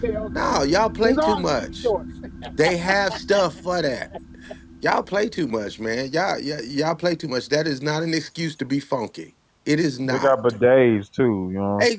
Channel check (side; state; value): both; identical; correlation 1.00